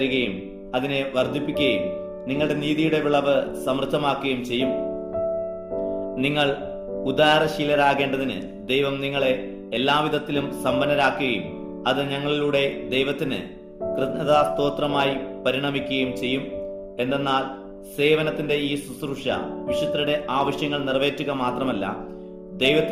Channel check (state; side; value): identical; both; correlation 1.00